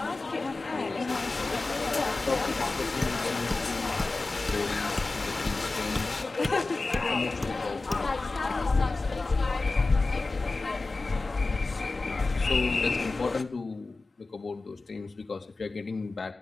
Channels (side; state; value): right; quieter; 3.4 dB